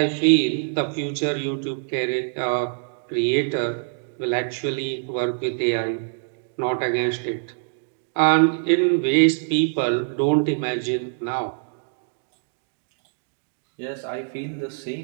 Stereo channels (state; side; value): silent; left; digital silence